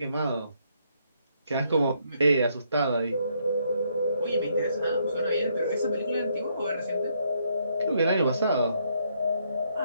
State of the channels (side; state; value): both; inverted; correlation -0.73